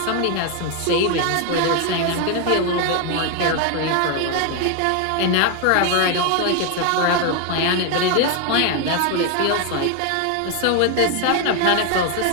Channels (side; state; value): both; different; correlation 0.01